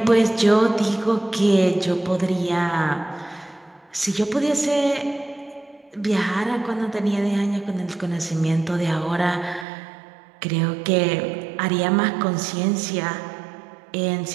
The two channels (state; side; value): drops out; left; at 9.7 s